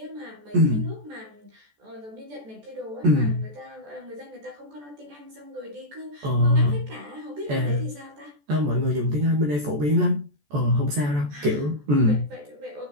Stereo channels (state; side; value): late; left; 14 ms